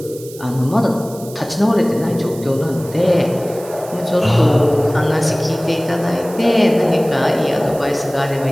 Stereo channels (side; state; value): right; noise; hiss, 18 dB below the sound